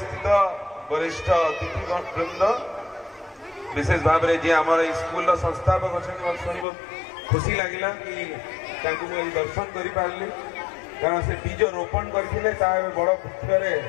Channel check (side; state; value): right; drops out; at 6.7 s